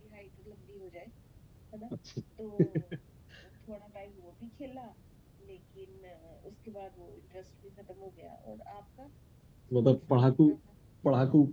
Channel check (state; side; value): identical; both; correlation 1.00